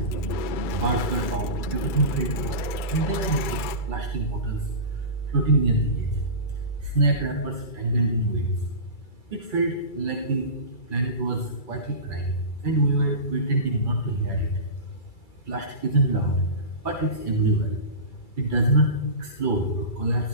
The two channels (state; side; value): late; right; 2.3 ms